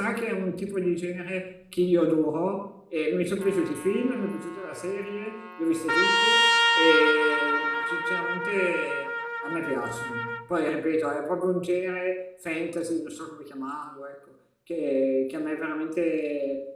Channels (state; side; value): identical; both; correlation 1.00